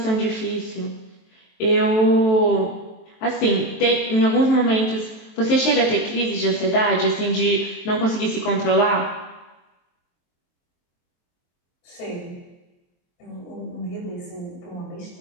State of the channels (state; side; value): late; right; 23 ms